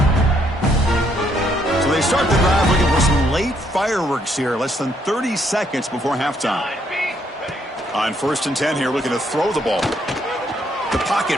They start the drive looking for some late fireworks here. Less than 30 seconds before halftime. On 1st and 10 here, looking to throw the ball. The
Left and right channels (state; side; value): normal; both; correlation 0.71